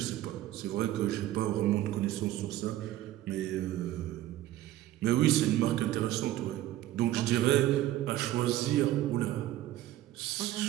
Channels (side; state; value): left; quieter; 14.2 dB